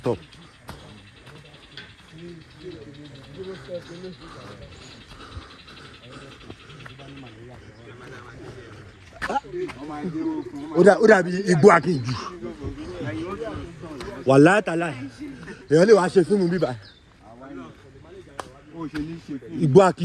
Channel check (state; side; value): identical; both; correlation 1.00